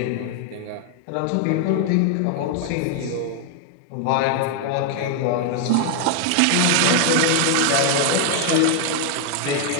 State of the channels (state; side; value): different; both; correlation 0.00